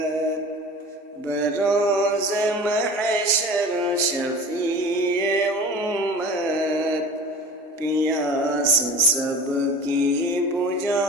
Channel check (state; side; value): normal; both; correlation 0.39